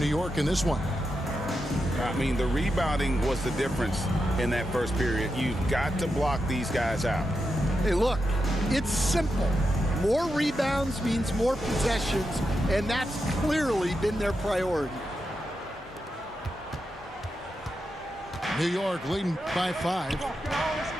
New York in this one? I mean, the rebounding was the difference in that first period. You've got to block these guys out. Hey, look, it's simple. More rebounds means more possessions, and that's clearly been their priority. New York leading by 5.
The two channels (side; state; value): both; normal; correlation 0.87